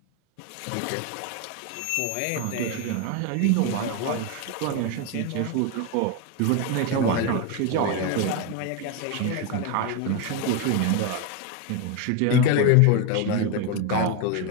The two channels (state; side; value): different; both; correlation 0.02